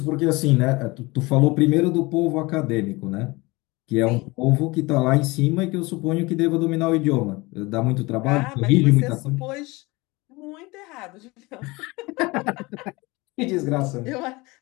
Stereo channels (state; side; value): quieter; right; 23.3 dB